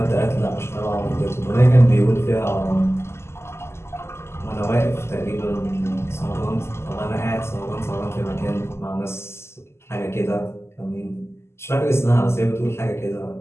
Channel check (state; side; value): late; right; 0.12 ms